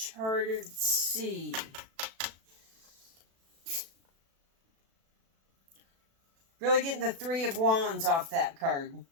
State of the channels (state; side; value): late; left; 36 ms